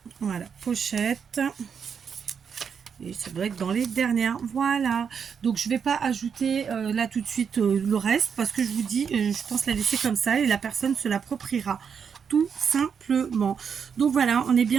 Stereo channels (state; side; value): quieter; left; 6.8 dB